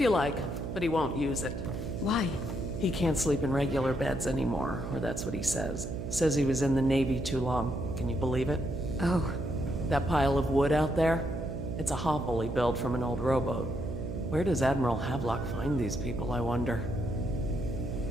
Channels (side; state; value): right; noise; hum, 5 dB below the sound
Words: like, but he won't use it. Why? He can't sleep in regular beds anymore, or that's what he says. Says he was in the Navy too long. Can you believe it? Oh, That pile of wood out there? It's a hovel he built from an old rowboat. Where does Admiral Havelock find these people, I wonder?